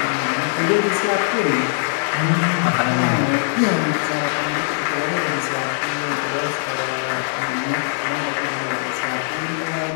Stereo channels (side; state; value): right; silent; digital silence